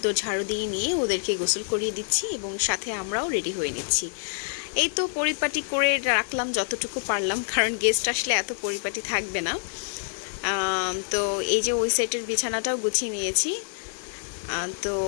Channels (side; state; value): right; silent; digital silence